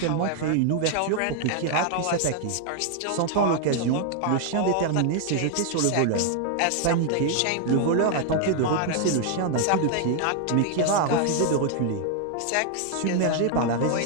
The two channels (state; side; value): different; both; correlation 0.00